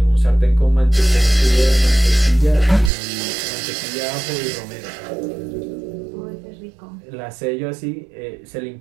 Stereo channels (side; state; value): left; drops out; at 2.9 s